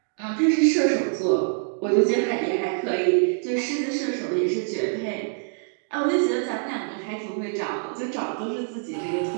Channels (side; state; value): left; silent; digital silence